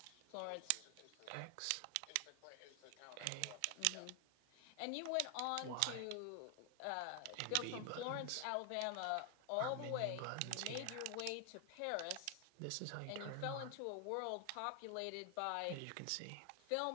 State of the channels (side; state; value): both; different; correlation 0.00